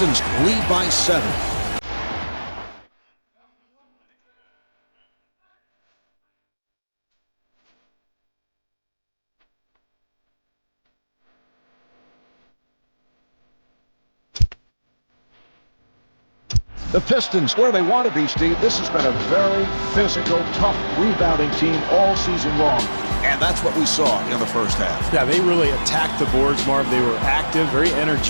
lead by 7. The Pistons, where they want to be, Steve. This has been a very physical, tough rebounding team all season long. And that's what we saw in the first half. Yeah, they really attacked the boards, Marv. They were active, very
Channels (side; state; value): both; inverted; correlation -1.00